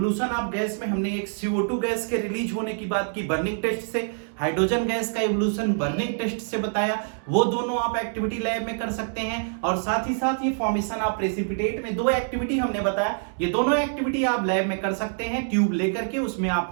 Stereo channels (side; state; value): left; silent; digital silence